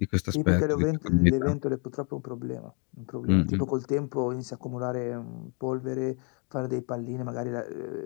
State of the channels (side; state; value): right; quieter; 36.5 dB